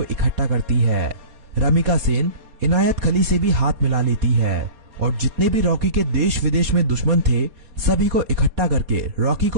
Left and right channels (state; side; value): late; left; 4.2 ms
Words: इकट्ठा करती है। रमिका सेन इनायत खली से भी हाथ मिला लेती है और जितने भी रॉकी के देश विदेश में दुश्मन थे सभी को इकट्ठा करके रॉकी